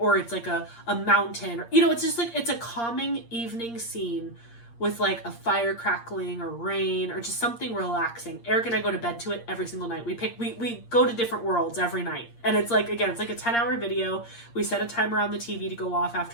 it's like a mountain, or, it's just like, it's a calming evening scene with like a fire crackling or rain or just something relaxing. Eric and I go to bed to it every single night. We go to different worlds every night. And it's like, again, it's like a 10-hour video. We set a timer on the TV to go off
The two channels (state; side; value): late; right; 8.6 ms